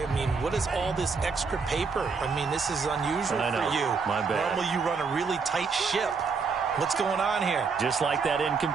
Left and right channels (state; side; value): quieter; left; 5.0 dB